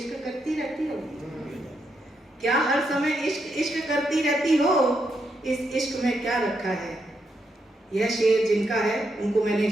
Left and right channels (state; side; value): normal; both; correlation 0.81